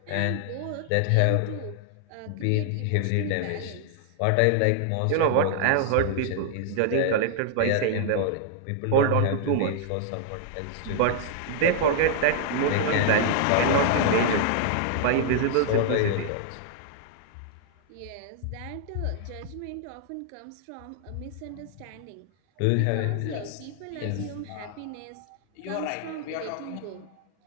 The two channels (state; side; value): different; both; correlation -0.01